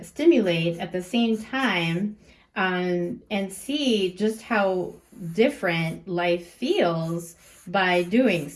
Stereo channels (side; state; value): both; identical; correlation 1.00